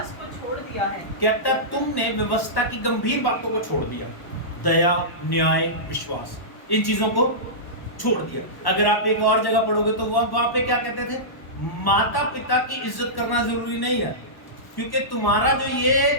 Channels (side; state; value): right; late; 1.1 ms